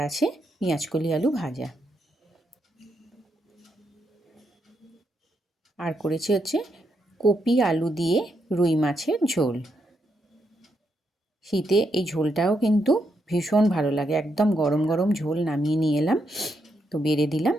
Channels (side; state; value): both; normal; correlation 0.80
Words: পেঁয়াজকলি আলু ভাজা। আর করেছি হচ্ছে কপি আলু দিয়ে রুই মাছের ঝোল। শীতে এই ঝোলটাও কিন্তু ভীষণ ভালো লাগে। একদম গরম গরম ঝোল নামিয়ে নিয়ে এলাম, তো বেড়ে দিলাম।